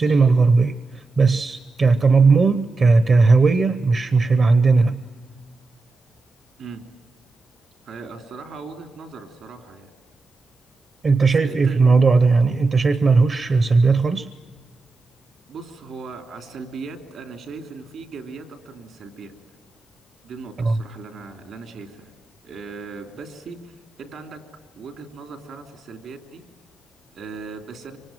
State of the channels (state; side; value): quieter; left; 3.8 dB